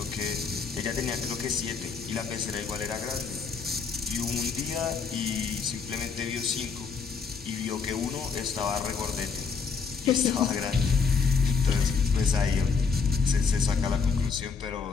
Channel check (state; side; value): quieter; right; 5.3 dB